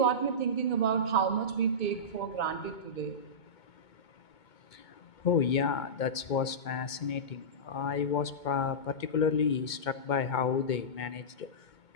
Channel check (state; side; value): late; right; 2.2 ms